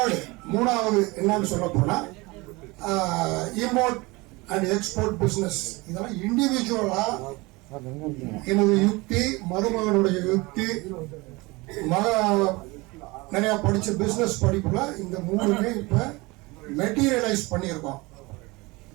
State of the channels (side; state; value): left; quieter; 23.8 dB